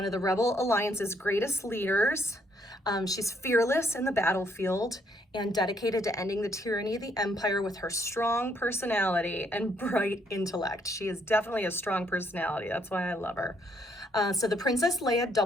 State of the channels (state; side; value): normal; both; correlation 0.70